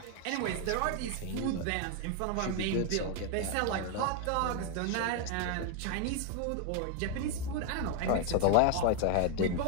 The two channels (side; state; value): both; different; correlation 0.01